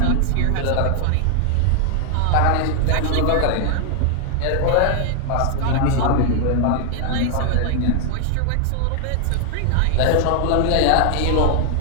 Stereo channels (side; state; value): both; different; correlation 0.00